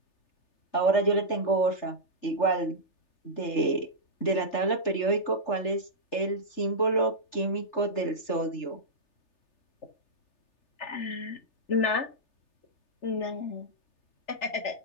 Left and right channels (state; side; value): late; right; 3.3 ms